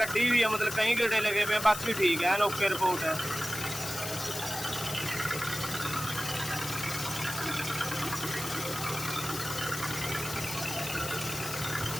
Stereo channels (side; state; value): left; noise; hiss, 7 dB below the sound